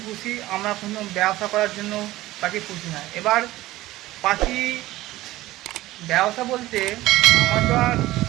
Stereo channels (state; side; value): quieter; left; 16.9 dB